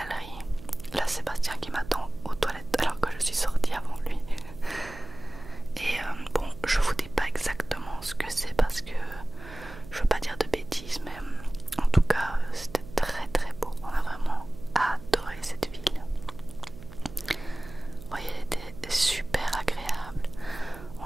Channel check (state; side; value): noise; right; hum, 16 dB below the sound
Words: Là Sébastien qui m'attend aux toilettes alors que je suis sortie avant lui. Et bon, je vous dis pas exactement ce que c'est parce que je veux pas dire de bêtises, mais en tout cas c'était très très beau. On a vraiment adoré cette ville. Vous voyez, elle était super agréable.